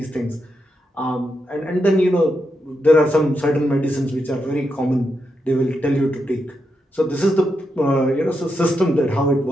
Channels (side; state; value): both; normal; correlation 0.84